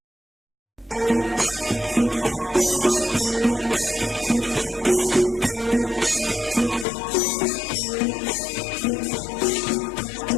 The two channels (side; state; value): right; drops out; at 6.9 s